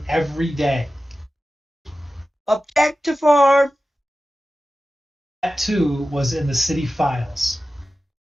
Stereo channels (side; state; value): both; normal; correlation 0.94